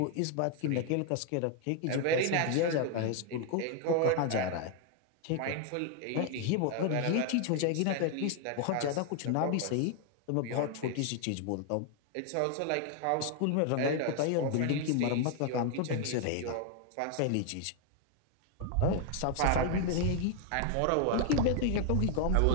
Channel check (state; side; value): different; both; correlation 0.00